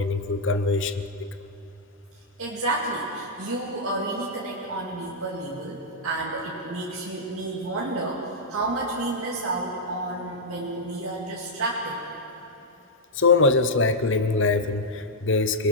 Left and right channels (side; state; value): both; normal; correlation -0.06